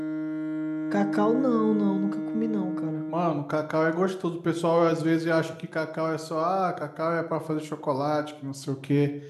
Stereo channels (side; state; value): both; identical; correlation 1.00